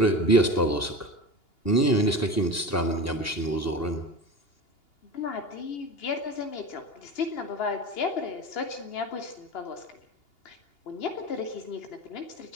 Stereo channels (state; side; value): late; right; 2.8 ms